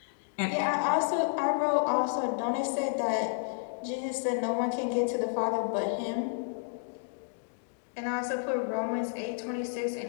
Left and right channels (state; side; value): silent; right; digital silence